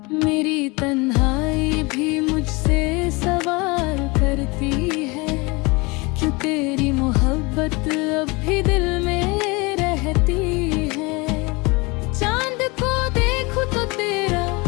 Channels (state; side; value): quieter; right; 26.1 dB